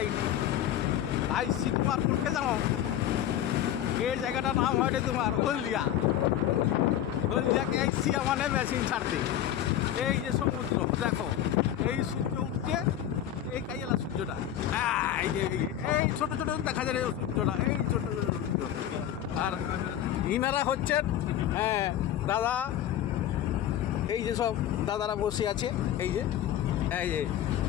আই শীতমারপুরকে জানো, এই জায়গাটার নাম হয় তোমার হলদিয়া। হলদিয়াকে আইসি মানে মেশিন ছাড়তে। এই যে সমুদ্র দেখো, এই সূর্য উঠছে, এই কাইলা সূর্যটা, এই ছোটো ছোটো দেখা যায় সূর্যটা, এই ছোটো ছোটো সূর্য। আর ইনারা হচ্ছেন দাদা, এই যে সব দাদারা বসে আছে, এই যে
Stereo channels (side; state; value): right; quieter; 11.2 dB